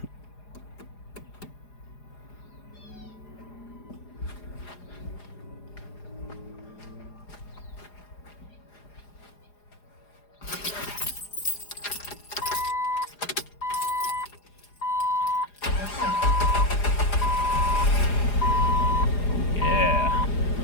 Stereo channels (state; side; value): late; right; 4.9 ms